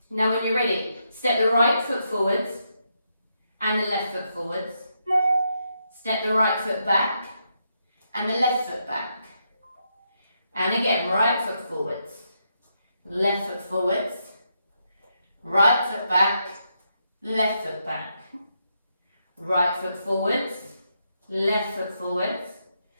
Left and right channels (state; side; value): inverted; both; correlation -0.81